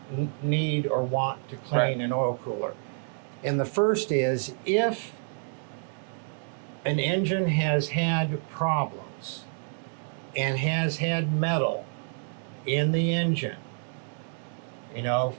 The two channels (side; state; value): left; silent; 59 dB below the other